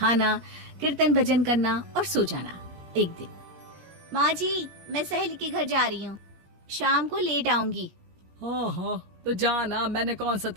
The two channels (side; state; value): left; late; 17 ms